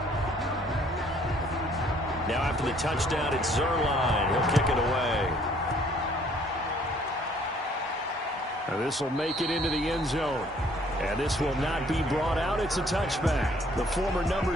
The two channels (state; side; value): normal; both; correlation 0.61